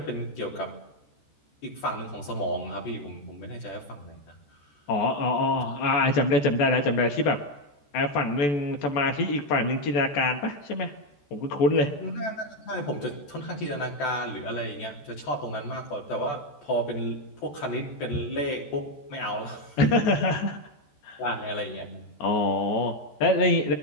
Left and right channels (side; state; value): right; late; 14 ms